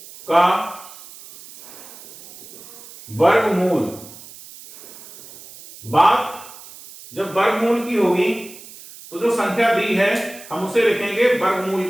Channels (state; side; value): noise; right; hiss, 18 dB below the sound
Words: का वर्गमूल, बात जब वर्गमूल की होगी तो जो संख्या दी है हम उसे लिखेंगे वर्गमूल